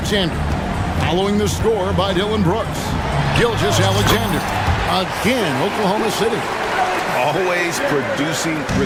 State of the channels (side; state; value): both; identical; correlation 1.00